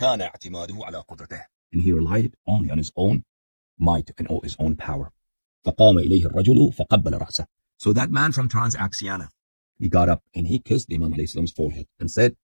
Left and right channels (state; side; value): inverted; both; correlation -1.00